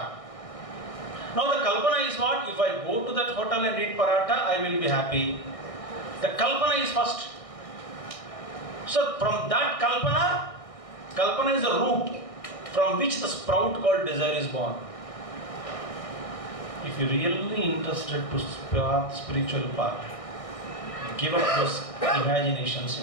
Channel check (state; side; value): late; right; 1.6 ms